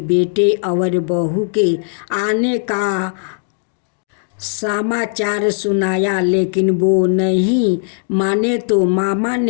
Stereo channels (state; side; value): silent; right; digital silence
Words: बेटे और बहू के आने का समाचार सुनाया, लेकिन वो नहीं माने तो मामा